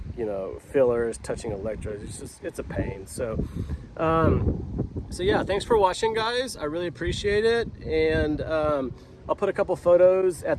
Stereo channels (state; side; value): identical; both; correlation 1.00